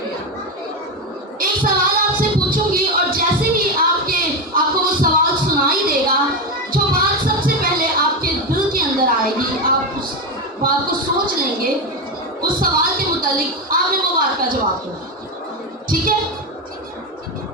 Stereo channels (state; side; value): normal; both; correlation 0.12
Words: एक सवाल आपसे पूछूंगी और जैसे ही आपको वो सवाल सुनाई देगा, जो बात सबसे पहले आपके दिल के अंदर आएगी, आप उस बात को सोच लेंगे, उस सवाल के मुतालिक आपने वो बात का जवाब देना। ठीक है?